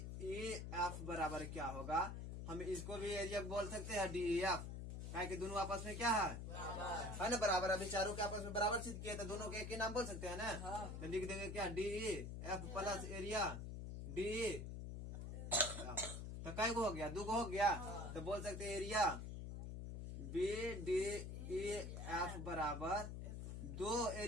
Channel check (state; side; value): noise; left; hum, 6 dB below the sound